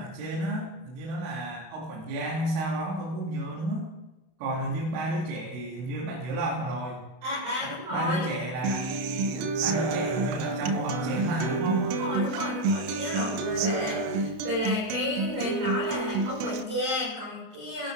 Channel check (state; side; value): late; left; 32 ms